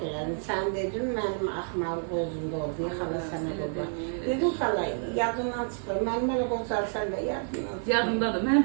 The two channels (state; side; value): silent; left; 59 dB below the other